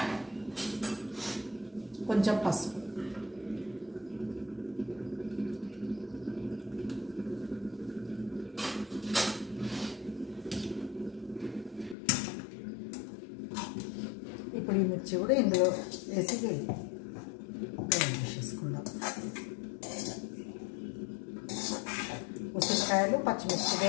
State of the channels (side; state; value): right; drops out; at 12.0 s